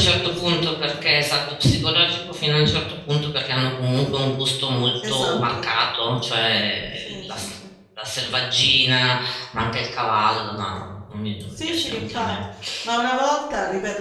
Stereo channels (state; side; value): identical; both; correlation 1.00